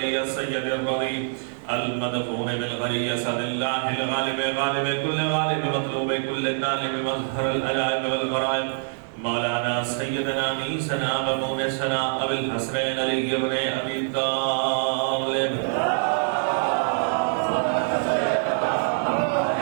السيد الرضي المدفون بالغري سد الله الغالب غالب كل غالب مطلوب كل طالب مظهر الألائم والغرائب مولانا سيدنا نيسنا ومونسنا أبي الحسنين علي بن أبي طالب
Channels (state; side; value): silent; left; digital silence